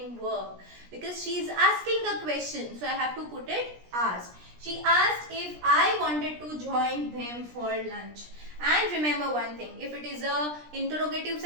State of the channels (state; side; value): late; left; 17 ms